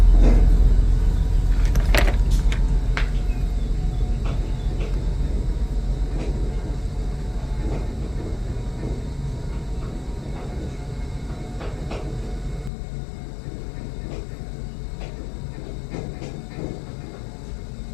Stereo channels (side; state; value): right; drops out; at 12.7 s